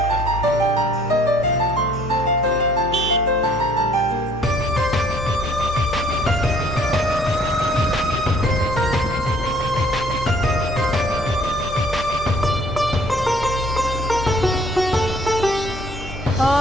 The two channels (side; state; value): both; normal; correlation 0.58